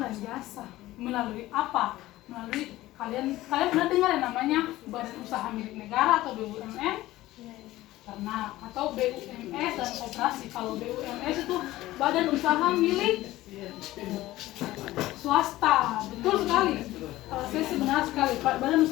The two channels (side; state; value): right; quieter; 16.6 dB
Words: dan jasa. Melalui apa? Melalui kalian pernah dengar yang namanya Badan Usaha Milik Negara atau BUMN? Pernah. Atau BUMS dan koperasi. Kalau BUMS itu Badan Usaha Milik Swasta. Betul sekali. Saya benar sekali. Badan